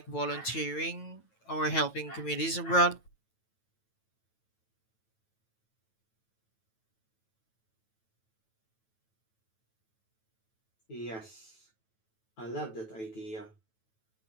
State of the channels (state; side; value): late; right; 9.1 ms